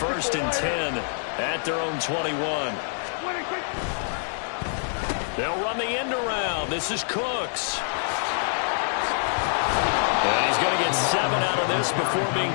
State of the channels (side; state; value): right; silent; digital silence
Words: and 10 at their own 21. They'll run the end around. This is Cooks. And he's going to get 7 out of this before being